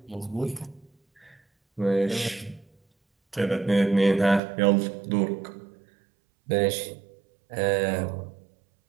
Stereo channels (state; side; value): drops out; left; at 4.4 s